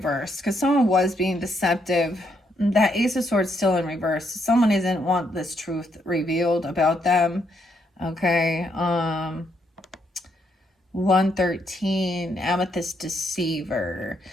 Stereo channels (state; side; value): normal; both; correlation 0.75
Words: because someone was being deceptive. That Ace of Swords still in reverse. Someone doesn't want this truth revealed about them. Okay. 113, Amethyst Deceiver.